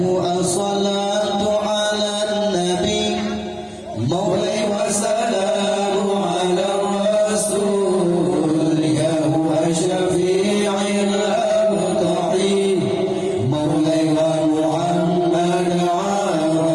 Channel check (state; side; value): identical; both; correlation 1.00